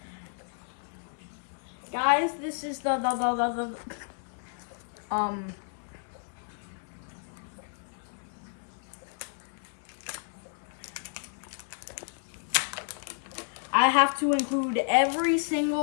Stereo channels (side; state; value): right; silent; 57 dB below the other